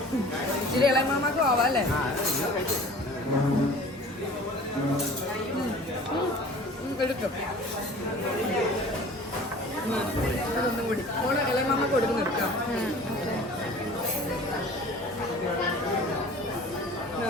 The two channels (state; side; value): normal; both; correlation 0.44